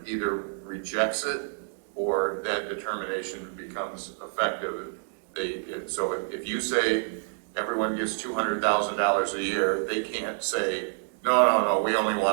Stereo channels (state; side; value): silent; left; digital silence